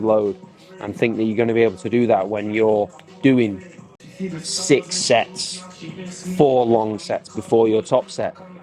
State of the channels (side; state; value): both; identical; correlation 1.00